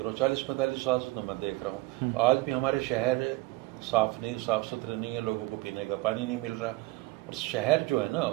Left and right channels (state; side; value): quieter; left; 21.1 dB